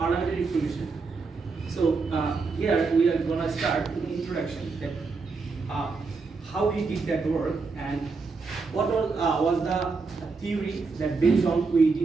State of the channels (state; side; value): quieter; left; 4.4 dB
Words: reformation. So here we are going to start with the introduction, that how we did that work and what was the theory that based on we